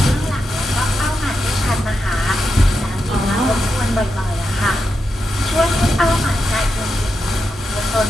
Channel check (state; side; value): normal; both; correlation 0.87